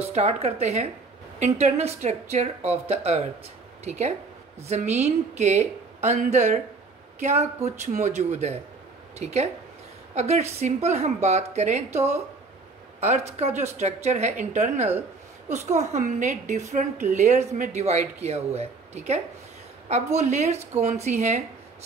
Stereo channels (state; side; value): quieter; left; 4.0 dB